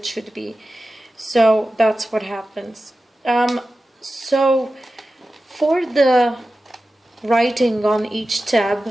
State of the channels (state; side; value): normal; both; correlation 0.94